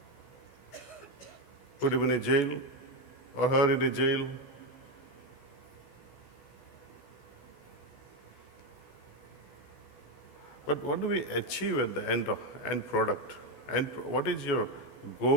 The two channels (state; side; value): late; right; 16 ms